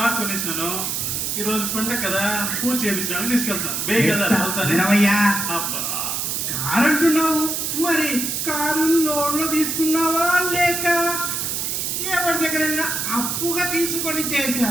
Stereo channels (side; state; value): right; noise; hiss, 1 dB below the sound